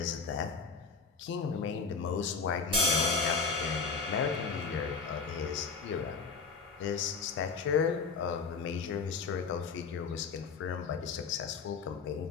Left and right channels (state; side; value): quieter; right; 5.0 dB